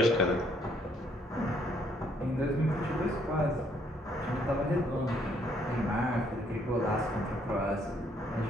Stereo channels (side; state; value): both; normal; correlation 0.67